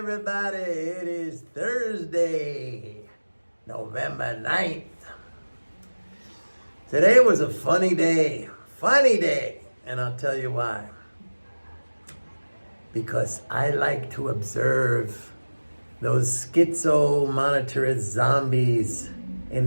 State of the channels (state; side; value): inverted; both; correlation -1.00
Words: It is Thursday, November 9th. Today was a funny day, and I'll tell you why. Because I like to observe those schizo monetarist zombies in